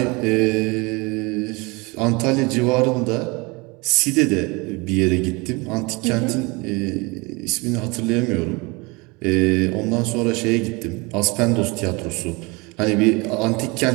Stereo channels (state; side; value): quieter; left; 26.5 dB